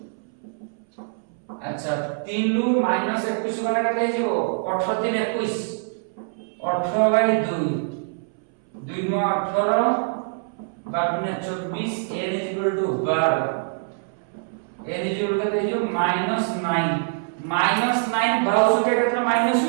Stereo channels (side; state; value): left; silent; 62 dB below the other